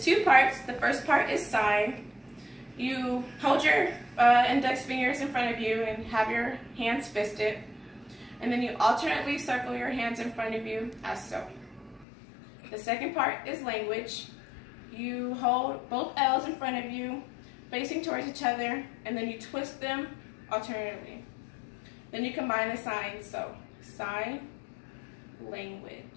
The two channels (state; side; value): drops out; right; at 12.1 s